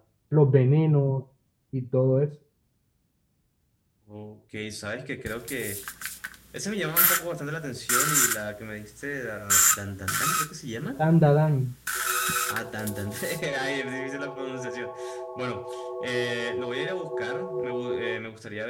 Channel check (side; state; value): both; identical; correlation 1.00